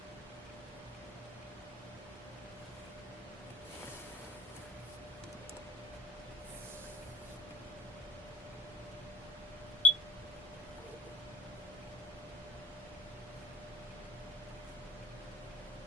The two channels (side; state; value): both; normal; correlation 0.45